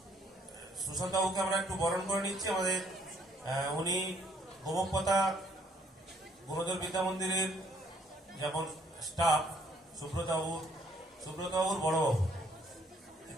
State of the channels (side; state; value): both; normal; correlation 0.66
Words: সুশান্ত বাবুকে আমরা একটু বরণ করে নিচ্ছি। আমাদের উনি গোমকপতা গুণধর বিদ্যা মন্দিরের যেমন স্টাফ সুব্রতবাবুর বড়বাবু